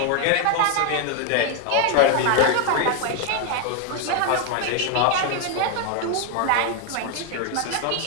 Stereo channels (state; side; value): different; both; correlation 0.01